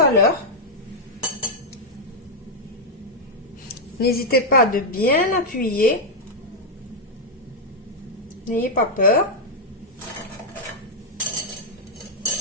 à l'heure. N'hésitez pas de bien appuyer. N'ayez pas peur.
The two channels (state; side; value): normal; both; correlation -0.02